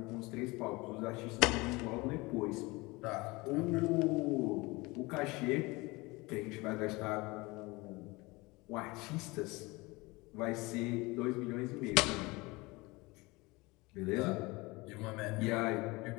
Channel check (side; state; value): right; quieter; 23.7 dB